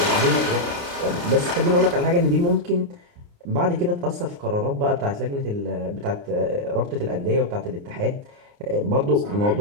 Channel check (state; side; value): late; left; 29 ms